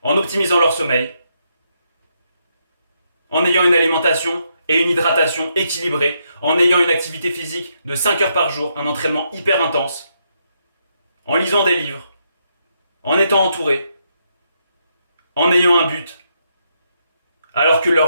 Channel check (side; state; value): both; inverted; correlation -0.78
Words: en optimisant leur sommeil, en ayant une alimentation et une hydratation équilibrée, en ayant une activité physique de 5 heures par jour, un entraînement hyper intense, en lisant des livres, en étant entouré, en ayant un but, alors que